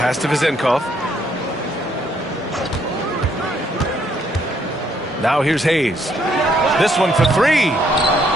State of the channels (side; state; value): both; normal; correlation 0.70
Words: to Vezenkov. Now here's Hayes. This one for three.